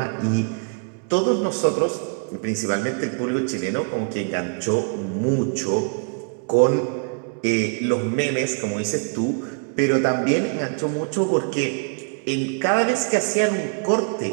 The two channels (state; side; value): quieter; left; 35.4 dB